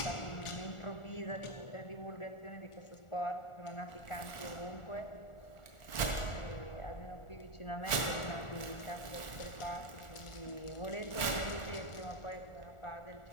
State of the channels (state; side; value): late; right; 1.4 ms